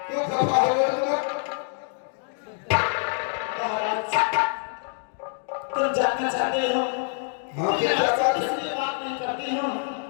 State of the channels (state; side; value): silent; right; 61 dB below the other